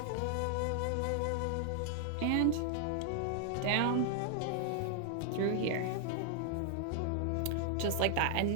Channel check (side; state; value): both; different; correlation 0.00